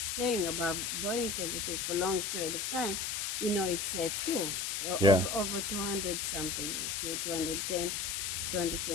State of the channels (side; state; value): left; noise; hiss, 1 dB below the sound